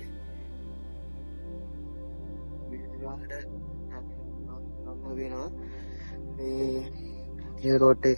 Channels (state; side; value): inverted; both; correlation -1.00